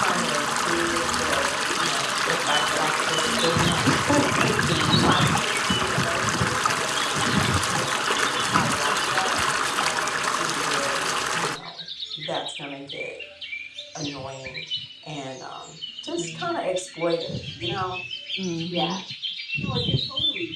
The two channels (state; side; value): identical; both; correlation 1.00